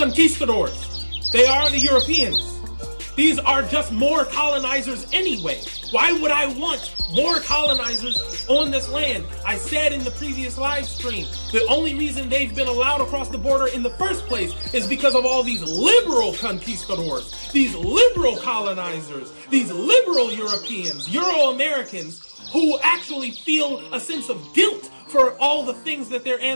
They are the Europeans. These are just more colonizers anyway. Why would I want more colonizers on this land? I said in the previous live stream, the only reason they've been allowed across the border in the first place is because of all these liberal conquistadors, these liberal colonizers, these liberal Europeans, Euro-Americans, who actually feel a sense of guilt for all the things that their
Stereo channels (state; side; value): inverted; both; correlation -1.00